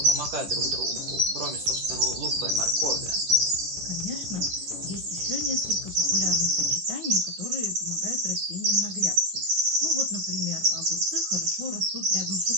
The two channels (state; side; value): late; left; 10 ms